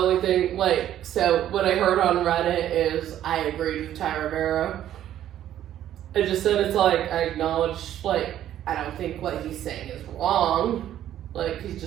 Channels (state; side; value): quieter; left; 11.7 dB